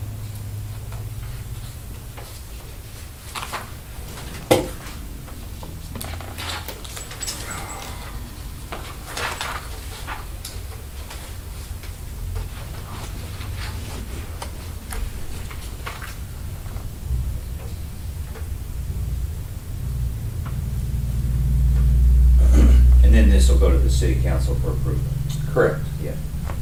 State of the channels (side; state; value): both; identical; correlation 1.00